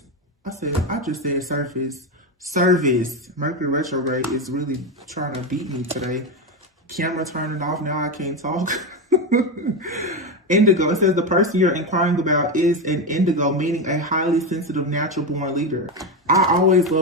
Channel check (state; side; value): normal; both; correlation 0.13